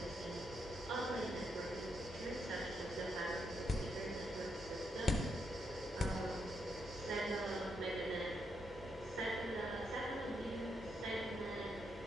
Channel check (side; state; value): both; normal; correlation 0.80